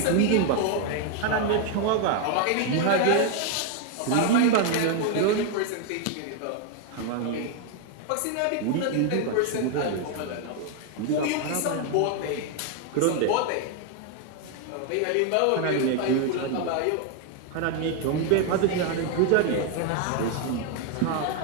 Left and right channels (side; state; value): both; different; correlation 0.01